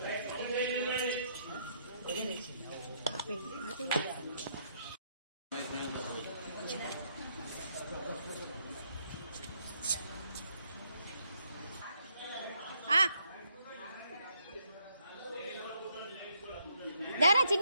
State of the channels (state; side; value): inverted; both; correlation -0.73